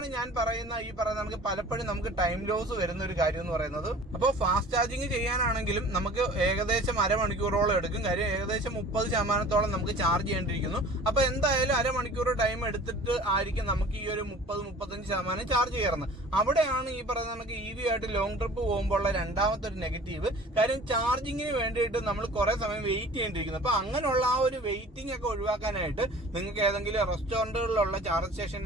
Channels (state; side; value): normal; both; correlation 0.45